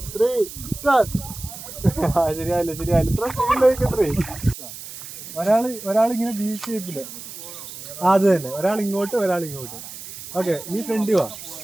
3 സ്റ്റാർട്ട്. ശരിയായില്ല ഇത്ര സ്പീഡിലേക്കത്രേ. ഒരാളിങ്ങനെ ബി ഷേപ്പില്, അത് തന്നെ, ഒരാൾ ഇങ്ങോട്ട് ഒരാൾ ഇങ്ങോട്ട്. ഓക്കെ, നീ ഫ്രണ്ട് വാ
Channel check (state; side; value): noise; right; hiss, 12 dB below the sound